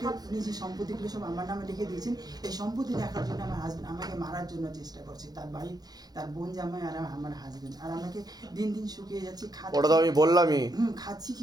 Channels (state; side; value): late; left; 0.19 ms